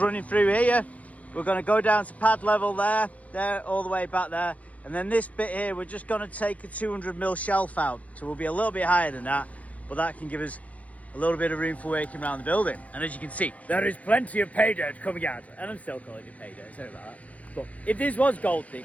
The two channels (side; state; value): right; late; 0.067 ms